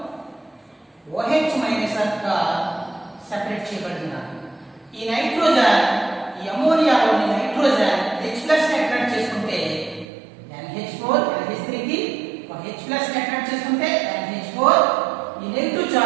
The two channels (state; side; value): drops out; left; at 10.1 s